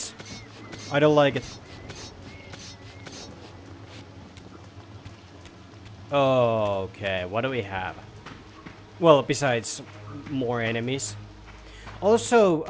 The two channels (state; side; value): identical; both; correlation 1.00